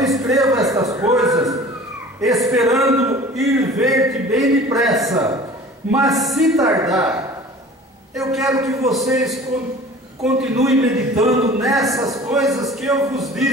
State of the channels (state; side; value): normal; both; correlation 0.43